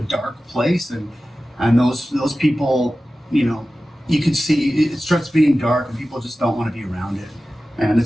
dark place, and those people, you can see it starts being dark, and people just don't want to be around it. And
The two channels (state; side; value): normal; both; correlation 0.95